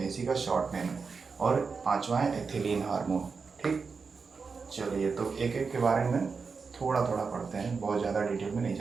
हैं, इसी का शॉर्ट नेम है, और पांचवा है एथिलीन हार्मोन, ठीक। चलिए तो एक एक के बारे में थोड़ा थोड़ा पढ़ते हैं, बहुत ज़्यादा डिटेल में नहीं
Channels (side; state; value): left; quieter; 5.0 dB